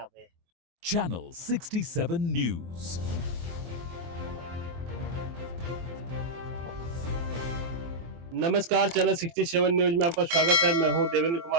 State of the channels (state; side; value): late; left; 24 ms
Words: पे। Channel 67 News। नमस्कार, चैनल 67 न्यूज में आपका स्वागत है। मैं हूं देवेंद्र